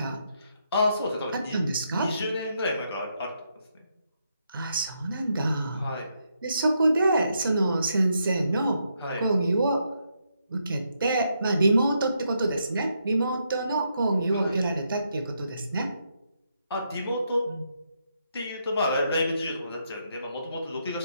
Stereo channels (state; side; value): inverted; both; correlation -0.79